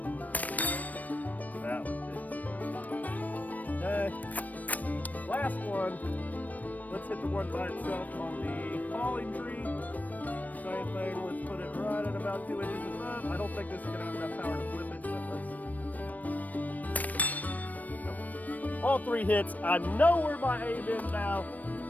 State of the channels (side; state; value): right; late; 0.077 ms